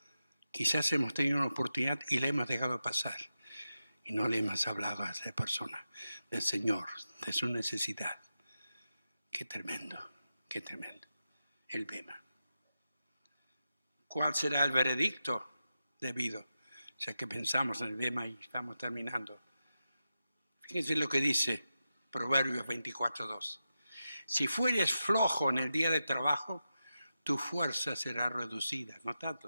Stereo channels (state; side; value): inverted; both; correlation -0.90